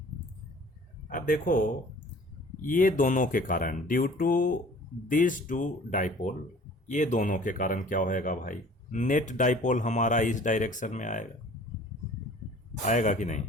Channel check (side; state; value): both; normal; correlation 0.49